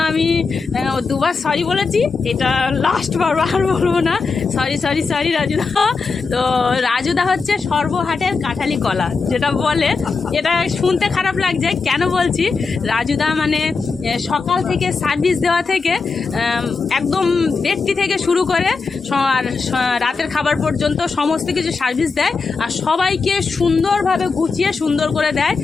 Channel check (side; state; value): right; quieter; 4.6 dB